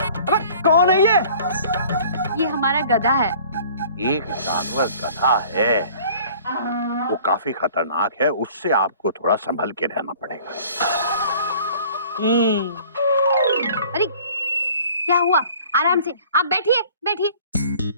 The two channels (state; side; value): inverted; both; correlation -0.50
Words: अबे कौन है ये हमारा गधा है। एक जानवर गधा है, वो काफी खतरनाक है, उससे आपको थोड़ा संभल के रहना पड़ेगा। अरे क्या हुआ? आराम से आप बैठिए बैठिए।